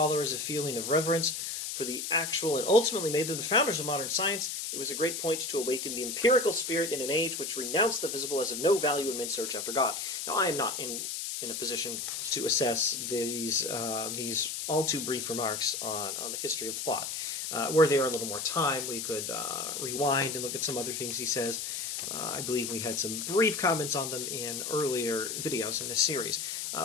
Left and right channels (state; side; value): noise; left; hiss, 4 dB below the sound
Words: a feeling of reverence for the actual and ultimately made them the founders of modern science, it was a great point to awaken the empirical spirit in an age which renounced the visible as of no value in men's search after God. Now, I am not in a position to assess these all too brief remarks on the history of thought. Were there a little more time, we could rewind and look at some other things he says. I believe we had some brief comments on them in earlier videos in this series.